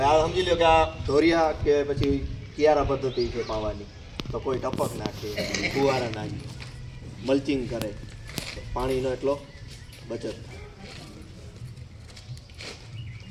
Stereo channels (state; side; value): identical; both; correlation 1.00